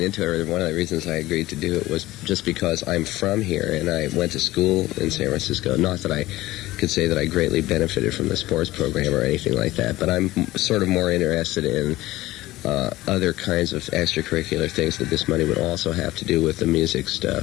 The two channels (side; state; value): right; quieter; 17.5 dB